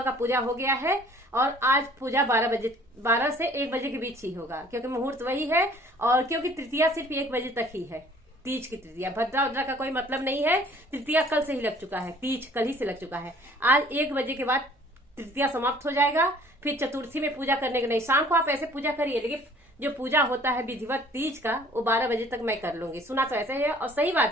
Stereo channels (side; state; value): both; normal; correlation 0.54